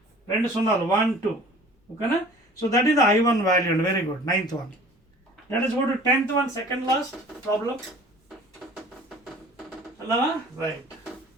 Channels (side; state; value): both; normal; correlation 0.47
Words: 2 సున్నాలు 1 2. ఓకేనా? So that is the I1 value అండి. Very good. 9th one. Let us go to 10th one, second last problem. అలాగా right